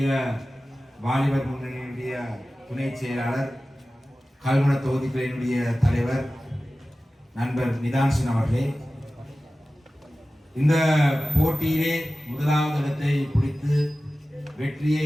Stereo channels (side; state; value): both; normal; correlation 0.95